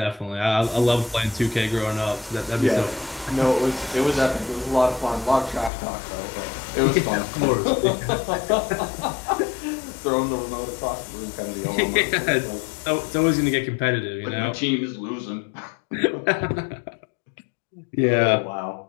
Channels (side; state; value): right; drops out; at 5.7 s